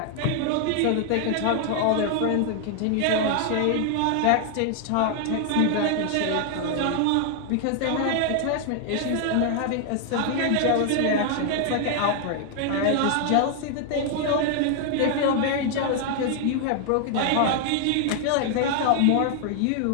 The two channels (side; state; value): both; different; correlation 0.00